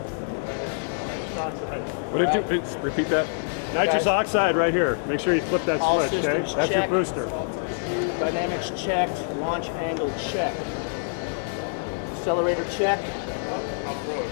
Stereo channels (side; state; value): right; silent; digital silence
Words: Nitrous oxide. What did you repeat that? Nitrous Guys. oxide right here. Make sure you flip that All switch, okay? systems That's check. your booster. Dynamics checked. Launch angle check. Accelerator check.